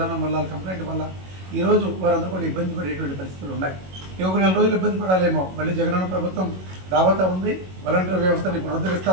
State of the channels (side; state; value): left; late; 21 ms